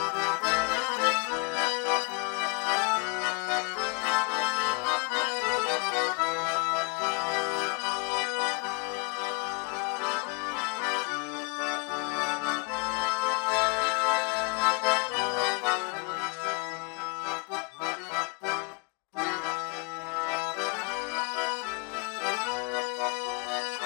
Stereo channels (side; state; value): right; quieter; 34.6 dB